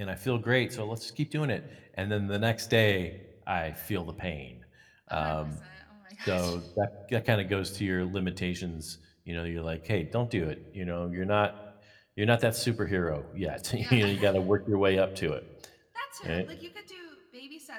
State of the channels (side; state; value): both; identical; correlation 1.00